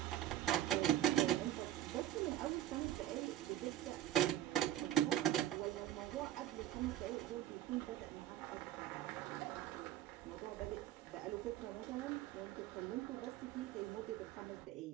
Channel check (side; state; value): left; quieter; 12.7 dB